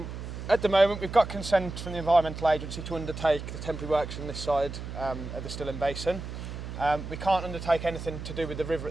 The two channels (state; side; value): noise; right; hum, 8 dB below the sound